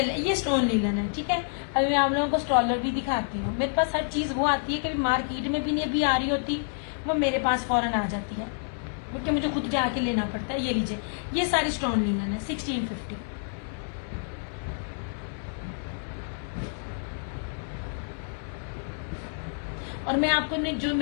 स्टोन लीलन है। ठीक है, अभी मैं आप लोगों को स्टॉलर भी दिखाती हूँ। मेरे पास हर चीज वो आती है, कभी मार्केट में भी नहीं अभी आ रही होती, वो मेरे पास फौरन आ जाती है, क्योंकि मुझे खुद जाके लेना पड़ता है। ये लीजिए, ये सारी स्टोन लीलन है, 1650। और मैं आपको जो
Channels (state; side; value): silent; right; 59 dB below the other